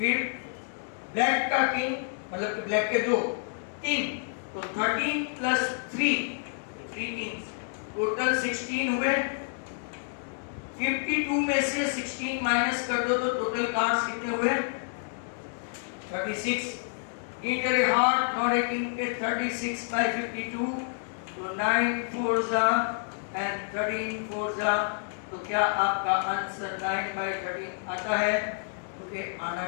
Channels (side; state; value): right; silent; digital silence